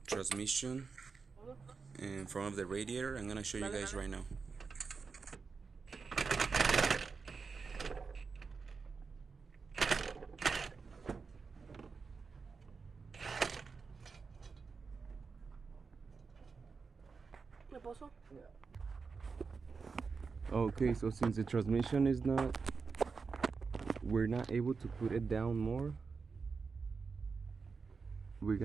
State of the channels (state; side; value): quieter; left; 4.9 dB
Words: transmission in front of the radiator. I'm gonna show you guys right now. pozo? Okay, so since the transmission is not, we're not able to put it down more, we're